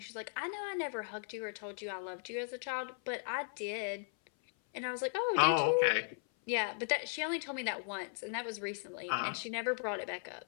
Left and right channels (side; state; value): right; silent; 53 dB below the other